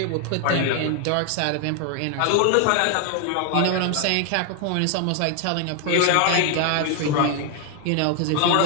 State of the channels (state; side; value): different; both; correlation 0.00